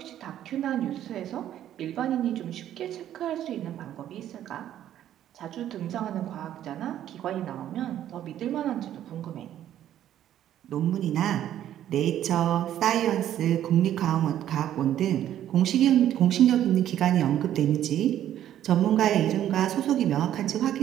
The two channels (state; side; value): quieter; left; 11.5 dB